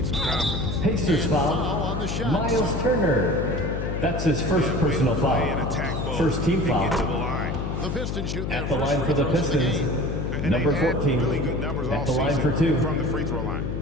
some confidence. Pacers foul. On the shot. Miles Turner. That's his first personal Play and foul. attack both First team and get to the foul. line. The Pistons shooting their At the first line free for the throws of the Pistons. game. And Number they've had 14. really good numbers At all the line season for 2. from the free throw line.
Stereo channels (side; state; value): left; noise; hum, 3 dB below the sound